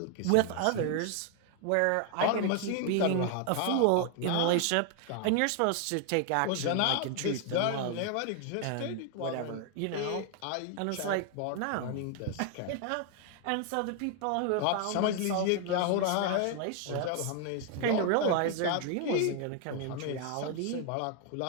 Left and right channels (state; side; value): different; both; correlation 0.00